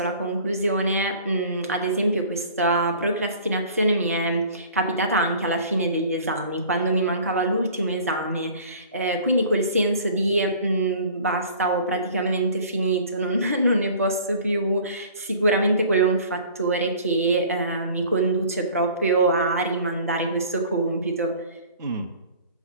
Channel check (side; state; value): both; inverted; correlation -0.47